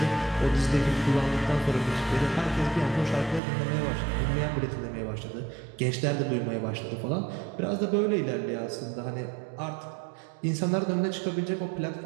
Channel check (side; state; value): left; drops out; at 3.4 s